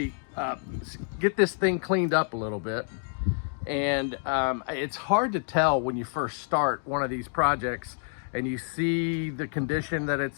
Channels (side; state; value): right; silent; 59 dB below the other